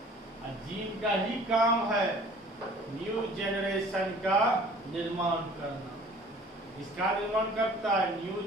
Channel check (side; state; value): both; normal; correlation 0.49